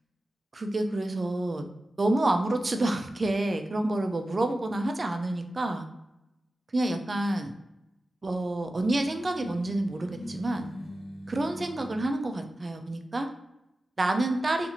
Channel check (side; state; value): both; normal; correlation 0.94